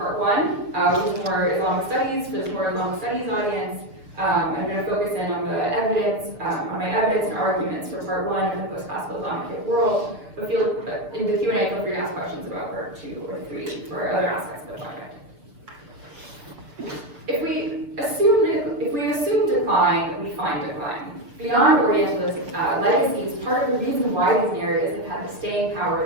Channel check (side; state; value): left; late; 6.7 ms